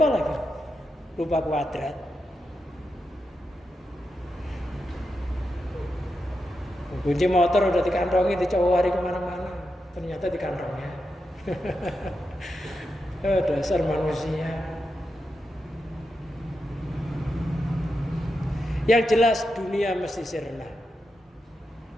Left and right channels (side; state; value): both; normal; correlation 0.87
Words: lagi, lupa kuadrat. Kunci motor udah dikantongi, dicowari kemana-mana, ternyata di kantongnya. Dasar manusia. Yang jelas dunia mesti sirna.